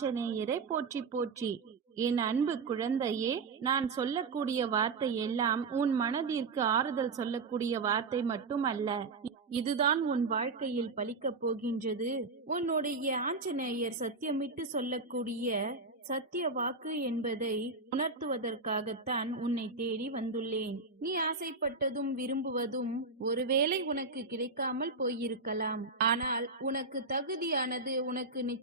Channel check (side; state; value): left; quieter; 4.0 dB